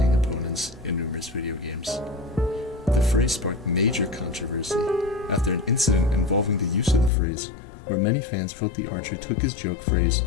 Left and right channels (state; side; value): drops out; right; at 7.1 s